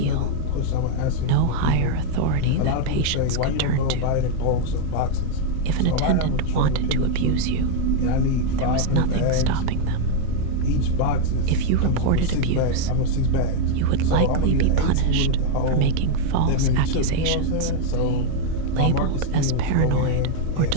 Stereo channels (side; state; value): both; different; correlation 0.00